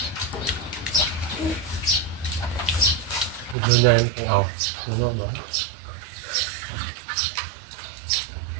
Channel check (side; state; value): left; drops out; at 3.6 s